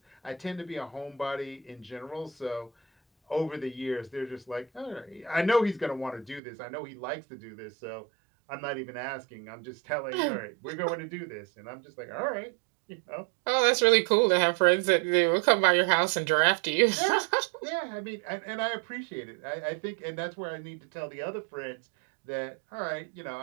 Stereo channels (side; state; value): left; drops out; at 6.4 s